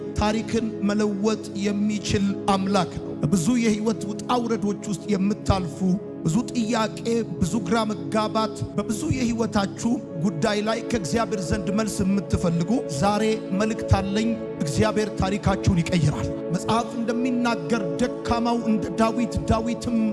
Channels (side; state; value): both; identical; correlation 1.00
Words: ታሪክን መለወጥ የሚችል አምላክ ነው። ብዙ የህይወት ውጣ ውረዶች ውስጥ የምታልፉ ብዙ ጥያቄ፣ ብዙ ግራ መጋባት በብዙ የህይወታችሁ ጉዳይ ላይ ከእግዚአብሔር ዘንድ መልስ የምትፈልጉ ዛሬ መልእክት አለኝ። እግዚአብሔር ታሪካችሁን ይቀይራል። መጽሐፍ እንደሚናገር ደካማው እንደ ዳዊት፣ ዳዊትም